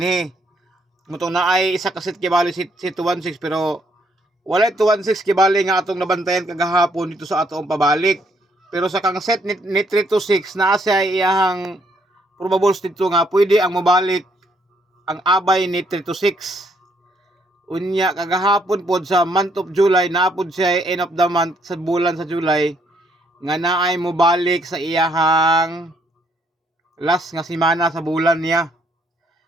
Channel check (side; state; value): both; normal; correlation 0.70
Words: mutong naay isa ka set kibali si 216 pero wala 216 kibali nga atong nabantayan kagahapon dito sa atong pabalik pero sa kang set ni 326 naa siya iyang probables dito nga pwede ang mobalik ang abay ni 326. Unya kagahapon pod sa month of July naapod siya end of the month sa bulan sa July nga naay mo balik sa iyahang last nga semana sa bulan niya.